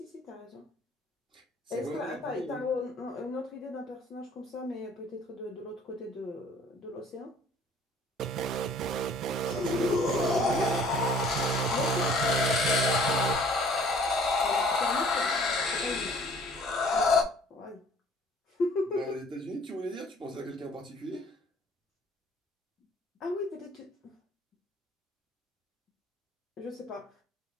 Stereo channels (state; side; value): normal; both; correlation 0.55